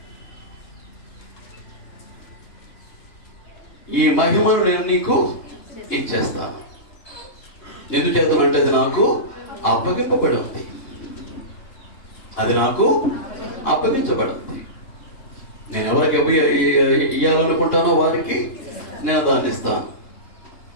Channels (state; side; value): late; right; 2.9 ms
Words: ఈ మహిమను నేను నీకు ఇచ్చేస్తాను. ఎందుచేతనంటే అది నాకు అప్పగింపబడి ఉంది, అది నాకు అప్పగించబడింది. నేను ఎవరికి ఇయ్యాలనుకుంటానో వారికి నేను దాన్ని ఇస్తాను.